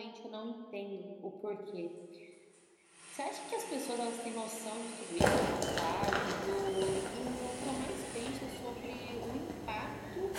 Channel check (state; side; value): identical; both; correlation 1.00